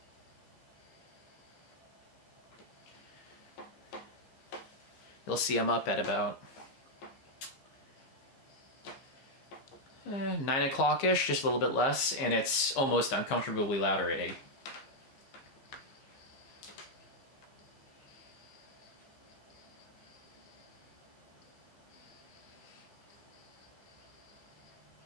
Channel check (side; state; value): right; late; 15 ms